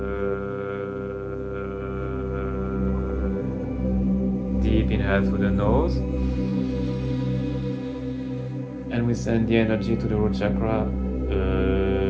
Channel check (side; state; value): both; identical; correlation 1.00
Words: Deep inhale through the nose, and we send the energy to the root chakra.